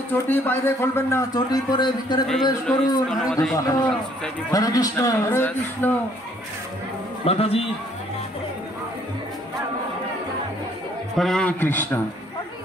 চটি বাইরে খুলবেন না, চটি পরে ভিতরে প্রবেশ করুন। হরে কৃষ্ণ হরে কৃষ্ণ হরে কৃষ্ণ। মাতাজি হরে কৃষ্ণ।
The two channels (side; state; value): both; normal; correlation 0.63